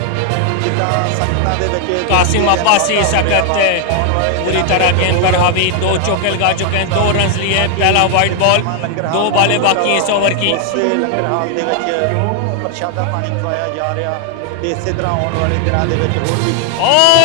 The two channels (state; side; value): different; both; correlation 0.00